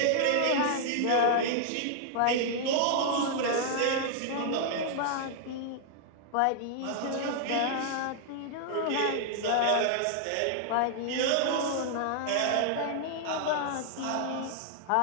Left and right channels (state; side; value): different; both; correlation -0.01